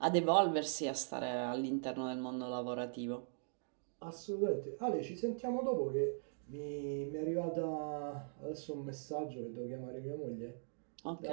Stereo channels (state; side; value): silent; left; digital silence